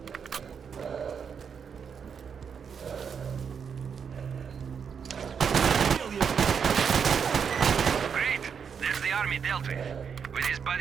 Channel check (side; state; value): left; quieter; 6.8 dB